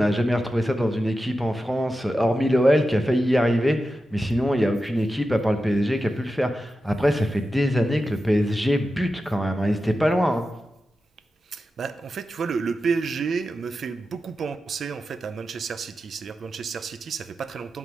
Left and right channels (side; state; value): both; normal; correlation 0.91